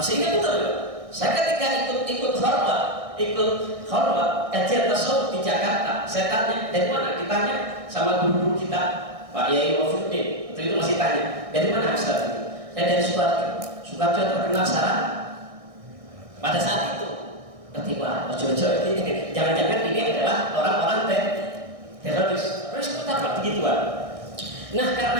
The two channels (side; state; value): left; late; 1.6 ms